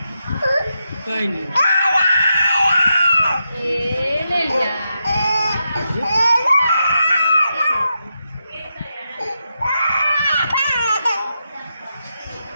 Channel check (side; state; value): both; inverted; correlation -0.86